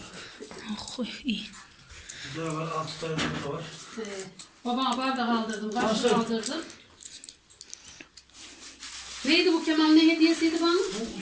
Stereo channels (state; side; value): identical; both; correlation 1.00